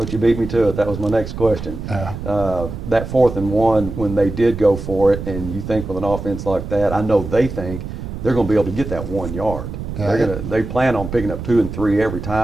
you beat me to it. That was my next question. Yeah. That 4th and 1, when they did go for it, and you think with an offense like that, I know they think they're going to be able to get that 1 yard. Yeah. They plan on picking up 2 and 3 every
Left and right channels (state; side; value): noise; right; rumble, 8 dB below the sound